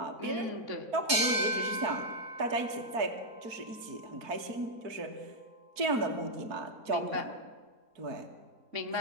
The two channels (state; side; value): late; left; 4.2 ms